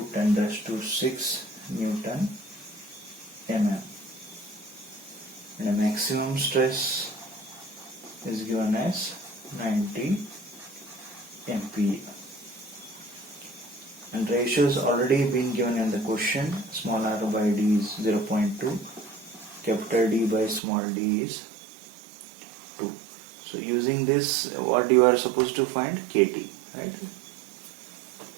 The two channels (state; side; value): drops out; left; at 20.6 s